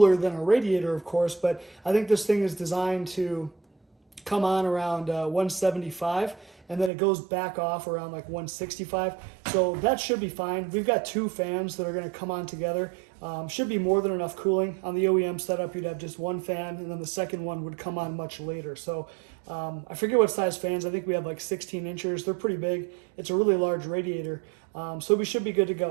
than a radiator, of course, but I think this thing is designed to come on around 175, and then it goes back off around like 165. So that should be fine. We've got two fans that are going to come on together. Should be more than enough cooling. On the OEM setup, you'd have just one fan, and then the second one would come on much later. So I forget what size fans. I think we have like 16 inches. They're pretty big. It's a really large radiator. So we should be good to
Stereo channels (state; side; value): drops out; left; at 6.9 s